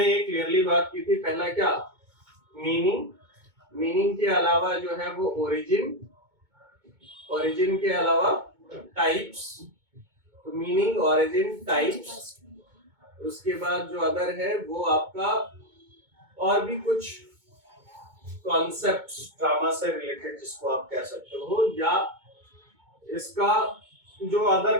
ये क्लियरली बात की थी। पहला क्या, मीनिंग के अलावा जो है वो ओरिजिन के अलावा टाइप्स, तो मीनिंग, ओरिजिन, टाइप्स। उसके बाद जो अदर है वो आपका और भी कुछ कॉन्सेप्ट्स ड्रामा से रिलेटेड जिसको आप कह सकते हो, या इसका जो अदर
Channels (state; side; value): late; left; 2.2 ms